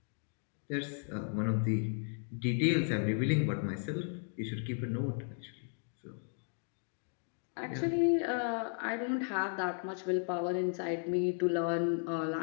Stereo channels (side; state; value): right; silent; 54 dB below the other